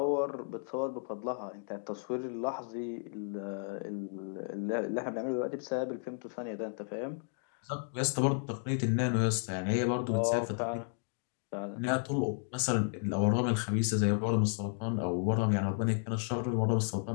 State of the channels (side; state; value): right; silent; 56 dB below the other